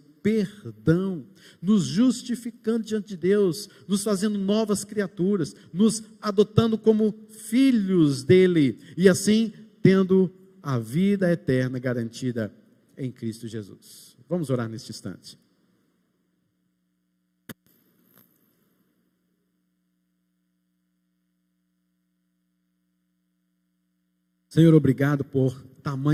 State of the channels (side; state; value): both; identical; correlation 1.00